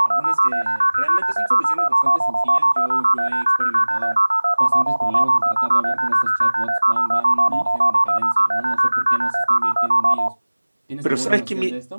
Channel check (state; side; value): inverted; both; correlation -1.00